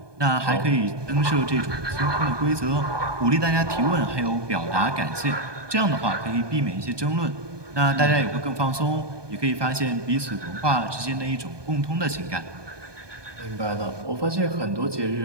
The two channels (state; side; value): late; left; 1.2 ms